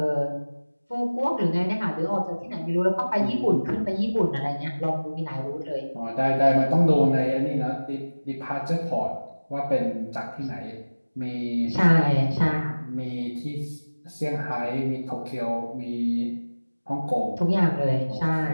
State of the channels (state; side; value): inverted; both; correlation -1.00